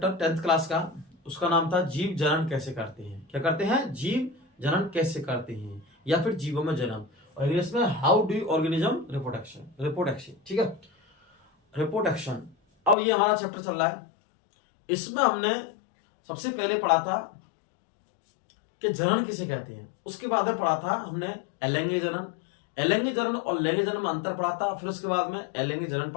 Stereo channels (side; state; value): right; drops out; at 13.0 s